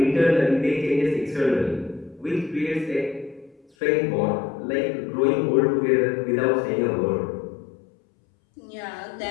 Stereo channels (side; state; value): right; drops out; at 3.7 s